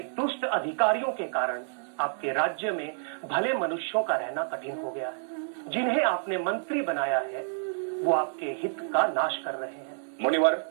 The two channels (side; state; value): left; silent; digital silence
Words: दुष्ट अधिकारियों के कारण आपके राज्य में भले मनुष्यों का रहना कठिन हो गया है। जिन्हें आपने मंत्री बनाया है वो आपके हित का नाश कर रहे हैं। मुनिवर,